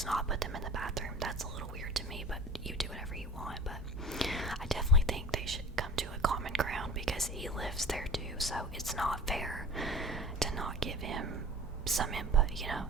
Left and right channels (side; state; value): both; normal; correlation 0.39